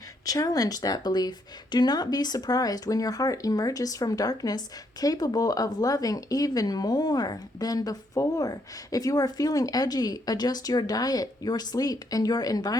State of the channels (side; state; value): both; normal; correlation 0.73